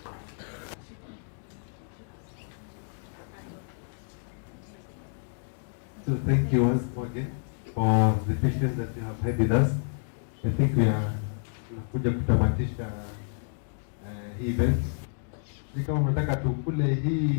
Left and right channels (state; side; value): silent; right; digital silence